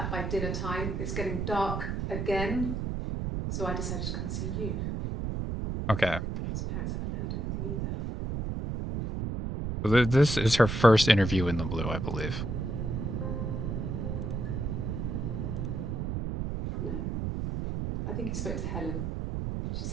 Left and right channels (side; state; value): right; noise; rumble, 2 dB below the sound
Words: by dinner time. It's getting dark again. So I decided to come see you. Okay. His parents haven't heard anything either. This is her first interview in the blue, I believe. No. I think he spoke to Helen. She